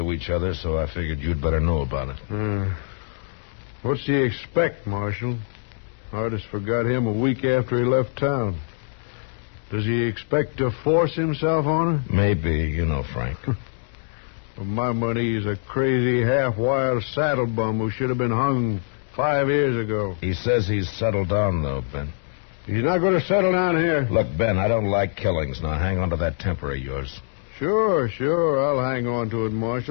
each other, so I figured you'd better know about it. What's he expect, Marshal? Artis forgot him a week after he left town. Does he expect to force himself on her? Maybe, you know, Frank. For my money, he's a crazy, half-wild saddle bum who should have been hung 5 years ago. He says he's settled down, though, Ben. He's not going to settle down here. Look, Ben, I don't like killings. Now, hang on to that temper of yours. Sure. I'll hang on to it,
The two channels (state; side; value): silent; right; digital silence